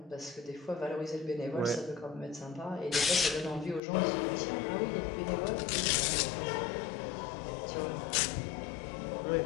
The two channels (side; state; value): right; drops out; at 3.8 s